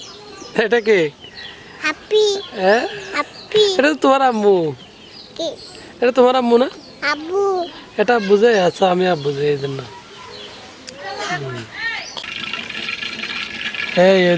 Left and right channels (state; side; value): identical; both; correlation 1.00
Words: এটা কি? হ্যাপি হ্যাঁ, হ্যাপি এটা তো তোমার আম্মু। কি এটা তোমার আম্মু না? আব্বু এটা বুঝে আচ্ছা, আমি আব্বু যে এই জন্য। এই